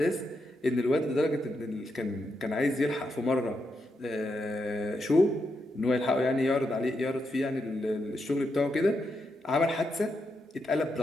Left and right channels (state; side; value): normal; both; correlation 0.83